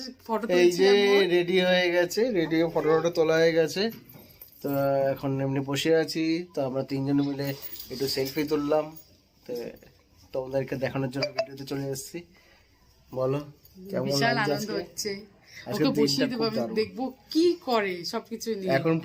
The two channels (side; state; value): both; identical; correlation 1.00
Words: ফটো এই যে রেডি হয়ে গেছে, রেডি হয়ে ফটো ফটো তোলা হয়ে গেছে। তো এখন এমনি বসে আছি, তো আমরা তিনজন মিলে একটু সেলফি তুললাম, তো তোমাদেরকে দেখানোর জন্য ভিডিওতে চলে এসেছি। বলো কেমন বিশাল লাগছে আনন্দ আজকে? হচ্ছে। আজকে ওকে বসিয়ে দিনটা দেবো, খুব আমি দারুণ। দেখবো কি করে সবকিছু নিয়ে। এখন